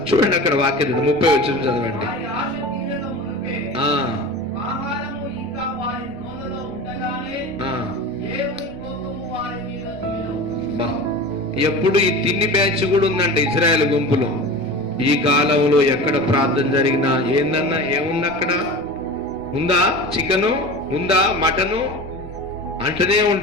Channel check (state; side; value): noise; right; rumble, 21 dB below the sound